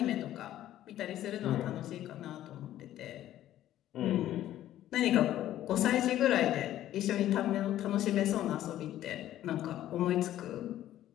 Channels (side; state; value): right; quieter; 12.9 dB